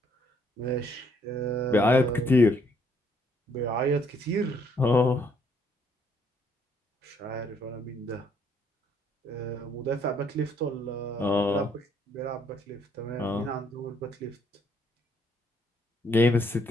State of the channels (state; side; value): normal; both; correlation 0.68